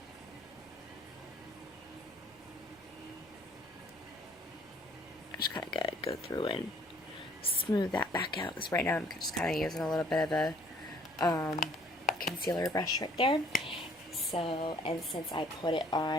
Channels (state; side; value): normal; both; correlation 0.59